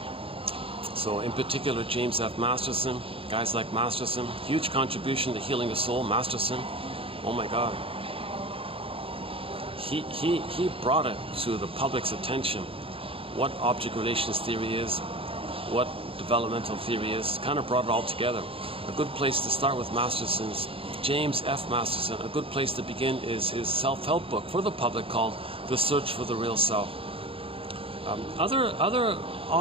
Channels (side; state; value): left; late; 0.27 ms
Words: So in particular, James F. Masterson, guys like Masterson, huge contribution to healing the soul. Masterson, oh my God. He brought it to the public's attention what object relations theory is, what developmental theory is, kind of brought it all together. A good place to start with Masterson's, James F. Masterson, a good place to begin is his self-help book for the public called The Search for the Real Self. Other